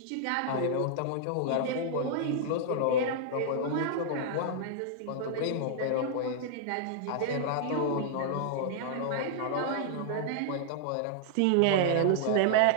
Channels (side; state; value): both; different; correlation -0.01